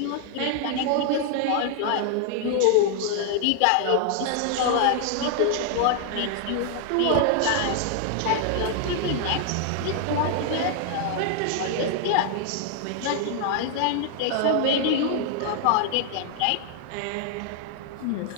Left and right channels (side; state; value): both; different; correlation 0.00